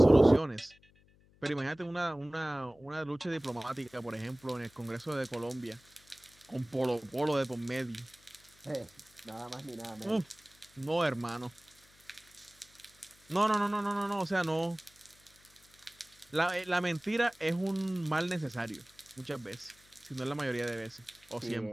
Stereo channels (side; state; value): left; noise; hum, 29 dB below the sound